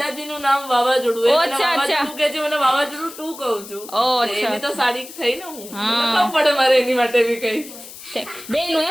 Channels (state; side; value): noise; left; hiss, 15 dB below the sound